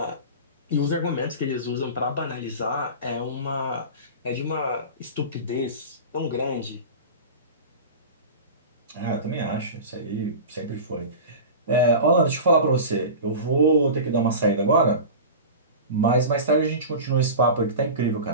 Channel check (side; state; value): both; inverted; correlation -0.31